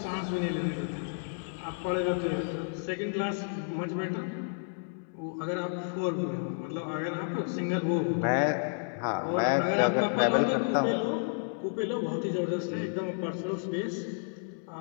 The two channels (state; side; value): silent; right; digital silence